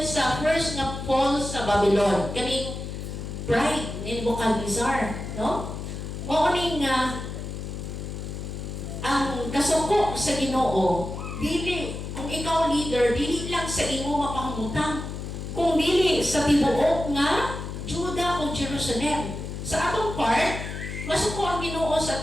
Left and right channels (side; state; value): left; noise; hum, 7 dB below the sound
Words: sa first na fall sa Babylon. Kaning pride ni Nebuchadnezzar, no? Mo ning ang kasuko sa Ginoo, dili kung ikaw leader, dili lang sa imo mapangutang, kung dili sa tibuok nga Juda o Jerusalem. Sa atong part, masuko ang Ginoo sa